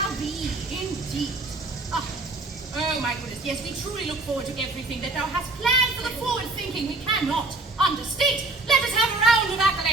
be, indeed. Oh, my goodness, yes, we truly look forward to everything that thou hast planned for the forward thinking we cannot understate. Let us have a round of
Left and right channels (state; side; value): quieter; left; 3.1 dB